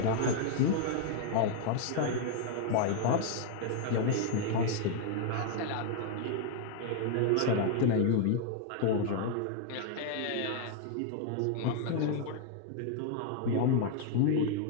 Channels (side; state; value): both; different; correlation 0.00